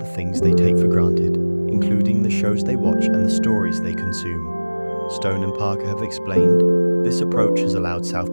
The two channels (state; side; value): inverted; both; correlation -1.00